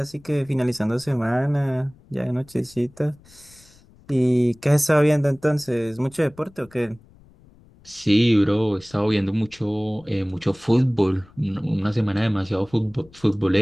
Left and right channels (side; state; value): left; noise; rumble, 27 dB below the sound